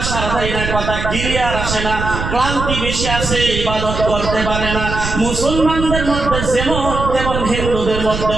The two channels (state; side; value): noise; right; rumble, 5 dB below the sound